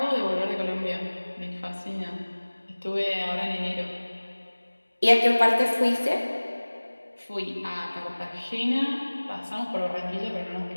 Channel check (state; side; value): inverted; both; correlation -1.00